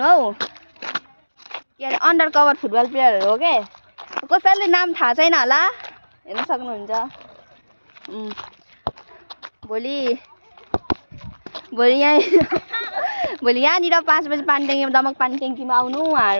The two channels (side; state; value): both; inverted; correlation -1.00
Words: हौ, के अरे अन्डर कभर फुटबल प्लेयरहरु हो के। कसैले नाम थाहा छैन होला, हेर्न सक्नुहुन्छ। भोलि यहाँनिर 5 बजे पानीट्याङ्कीमा दमक पानीट्याङ्कीमा आउनु